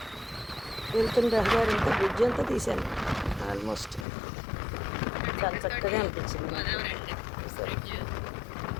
వెళ్తున్న రహదారి అంతా బ్రిడ్జ్ అంతా తీసాను ఆల్మోస్ట్. చాలా చక్కగా అనిపించింది సరే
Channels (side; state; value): right; drops out; at 4.0 s